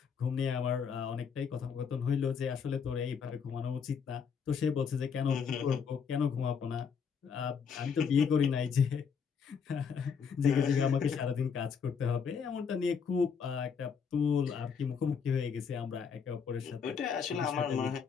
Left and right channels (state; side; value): quieter; right; 6.4 dB